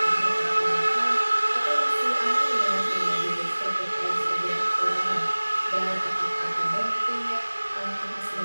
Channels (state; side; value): inverted; both; correlation -1.00